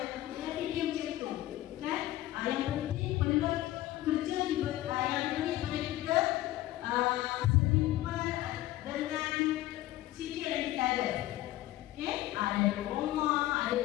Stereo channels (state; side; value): quieter; right; 15.6 dB